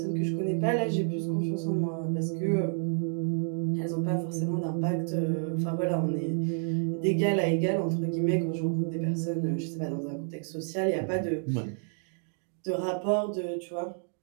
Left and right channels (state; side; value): silent; left; 57 dB below the other